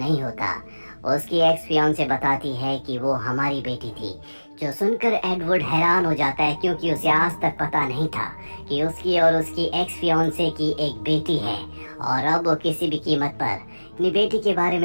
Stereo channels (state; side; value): inverted; both; correlation -1.00